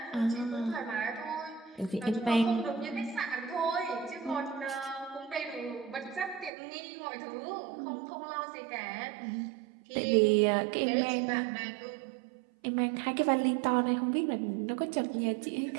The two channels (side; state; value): left; drops out; at 6.5 s